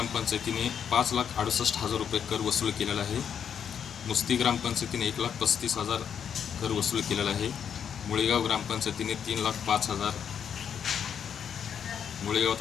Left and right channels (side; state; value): right; quieter; 8.0 dB